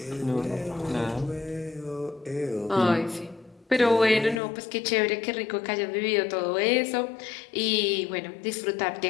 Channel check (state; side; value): drops out; right; at 4.4 s